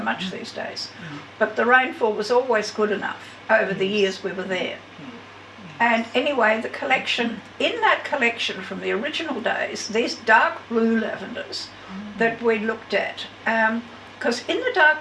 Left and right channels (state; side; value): identical; both; correlation 1.00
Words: these days. But the rainfall was always good enough over the years we were there. And anyway, in that collection from the original days, these dark blue lavenders that we looked at, because in the